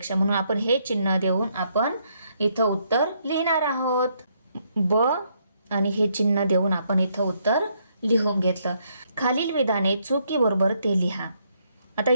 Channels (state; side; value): inverted; both; correlation -0.73